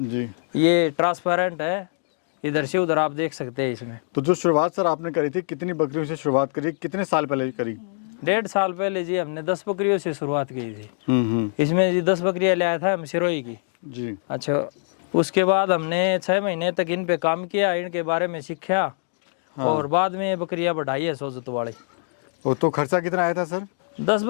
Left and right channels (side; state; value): right; silent; digital silence